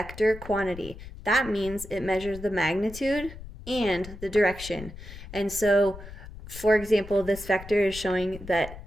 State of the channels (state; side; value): noise; left; rumble, 14 dB below the sound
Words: quantity. That means it measures the magnitude and the direction. And so, for example, this vector is showing that